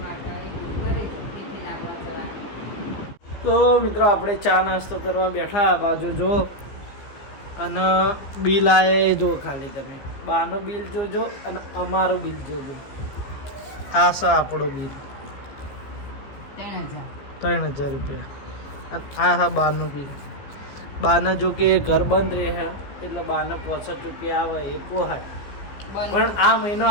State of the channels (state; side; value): late; right; 15 ms